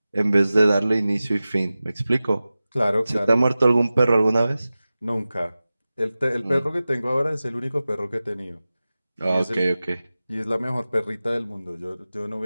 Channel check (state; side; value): inverted; both; correlation -0.96